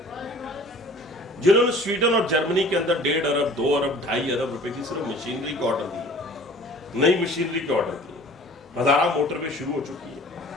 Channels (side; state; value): both; normal; correlation 0.49